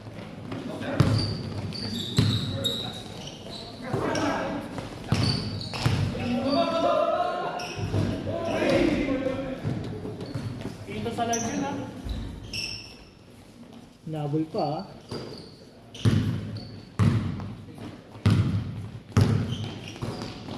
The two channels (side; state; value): both; identical; correlation 1.00